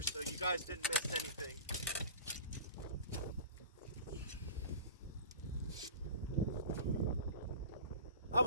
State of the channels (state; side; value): inverted; both; correlation -0.39